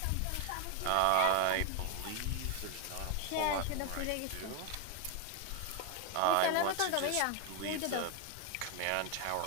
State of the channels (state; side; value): different; both; correlation 0.01